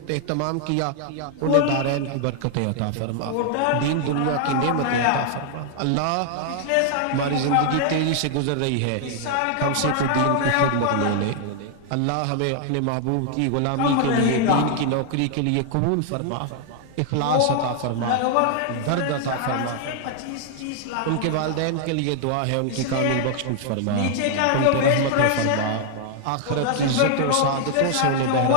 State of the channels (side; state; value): both; different; correlation 0.00